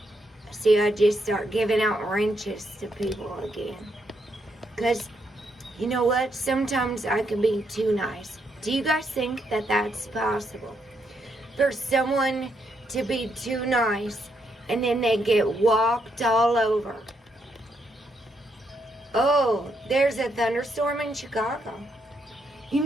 See, I just start giving out wrenches to people again. Because, you know what? Sometimes I can be too nice. Do you guys think that that's possible? For someone to be too nice and then they get walked all over. Oh, there's a thunderstorm in Chicago. You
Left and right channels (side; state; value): both; normal; correlation 0.77